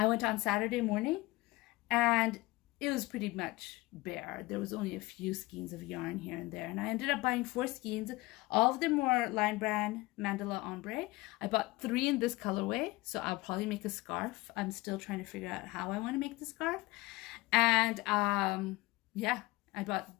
went on Saturday morning, and it was pretty much bare. There was only a few skeins of yarn here and there. And I ended up buying 4 skeins. All of them were Lion Brand Mandala Ombre. I bought 3 in this colorway, so I'll probably make a scarf. I'm still trying to figure out how I want to make the scarf. And yeah, I bought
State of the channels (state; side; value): quieter; right; 20.6 dB